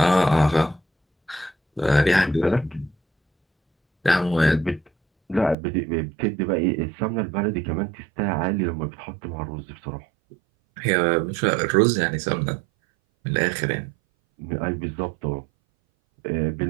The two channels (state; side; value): drops out; left; at 5.6 s